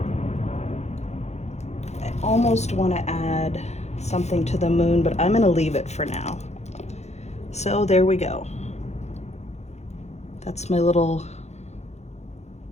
I almost want to add something to the moon, but I'm going to leave it for now. So there we go. That's my little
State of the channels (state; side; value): late; right; 0.32 ms